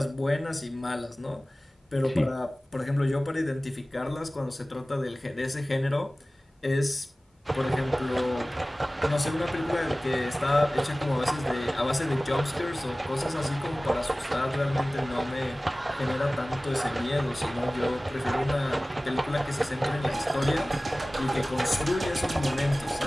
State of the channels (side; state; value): both; normal; correlation 0.97